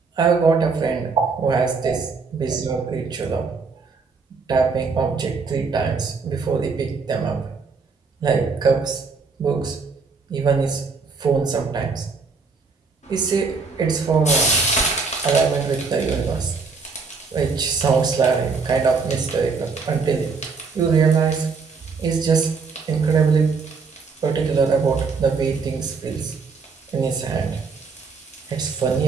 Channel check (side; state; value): left; quieter; 4.7 dB